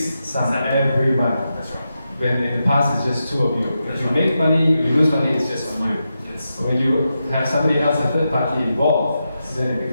sum every month. That's right. When in the past it's just 2 of you. If you make money, you lose money, it's just on you. Yes. But when you have somebody else, a third party involved, then it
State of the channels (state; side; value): inverted; both; correlation -0.88